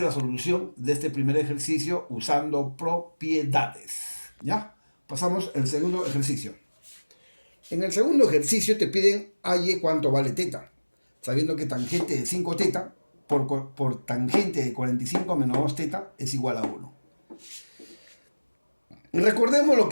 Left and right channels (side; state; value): both; inverted; correlation -1.00